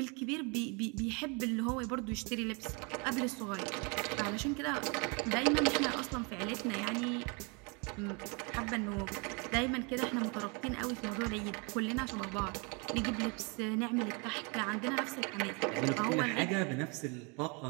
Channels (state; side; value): quieter; left; 31.9 dB